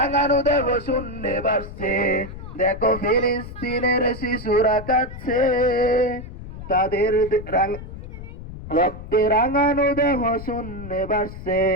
দেহ শূন্যে ভাসছে। দেখো ফিলিস্তিনের শিশুরা কাঁদছে, তাদের রক্তে রাঙানো দেহ শূন্যে ভাসছে।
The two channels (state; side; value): noise; left; rumble, 12 dB below the sound